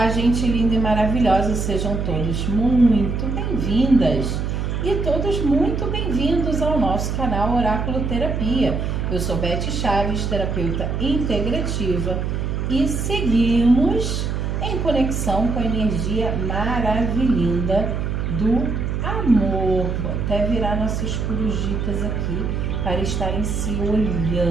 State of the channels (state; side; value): noise; right; hum, 1 dB below the sound